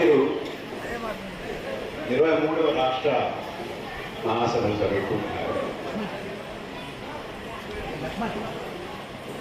23వ రాష్ట్ర మహాసభలు జరుగుతున్నారు.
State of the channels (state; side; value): identical; both; correlation 1.00